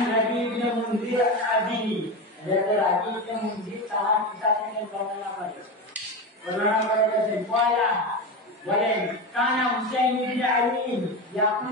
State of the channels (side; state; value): both; normal; correlation 0.20